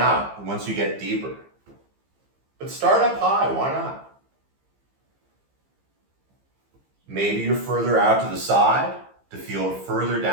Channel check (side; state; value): left; late; 15 ms